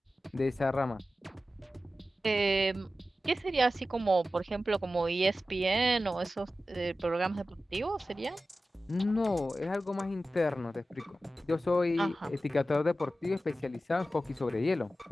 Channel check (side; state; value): both; normal; correlation 0.94